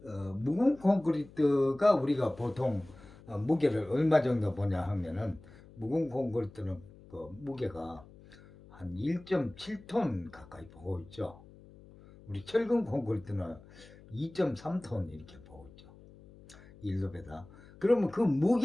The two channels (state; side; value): noise; left; hum, 22 dB below the sound